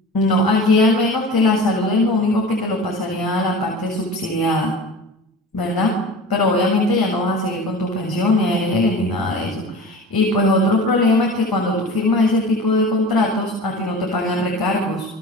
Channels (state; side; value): normal; both; correlation 0.36